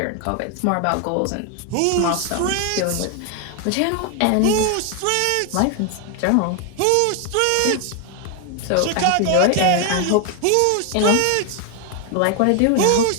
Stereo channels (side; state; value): both; different; correlation 0.01